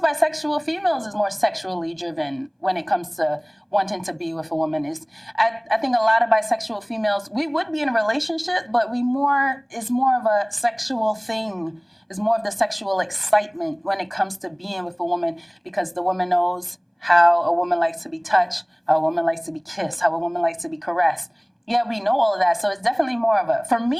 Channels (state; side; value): identical; both; correlation 1.00